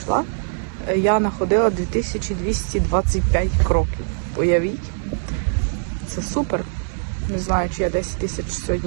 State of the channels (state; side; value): silent; left; digital silence